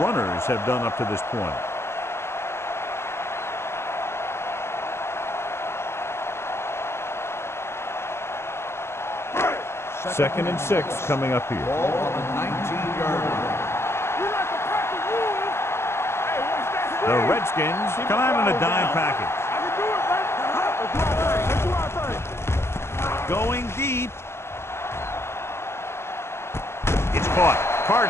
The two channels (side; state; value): right; late; 0.12 ms